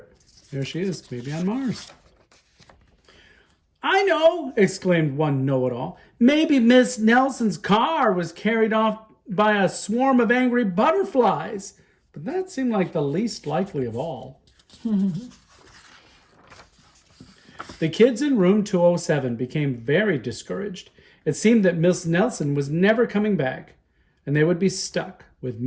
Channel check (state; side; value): identical; both; correlation 1.00